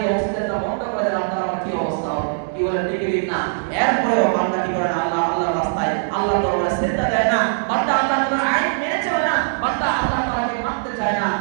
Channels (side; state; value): left; silent; digital silence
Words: এই অক্সিজেনটা বন্ধ করে দেন আপনার আমার কি অবস্থা হবে? কি বলেন ঠিক না? এরপরেও বান্দা কি করেন? আল্লাহর রাস্তায় আল্লাহর দরবারে সিজদা দেয় না, বান্দা আল্লাহর আইন মেনে চলে না, বান্দা আল্লাহ তাআলাকে মানতে চায় না।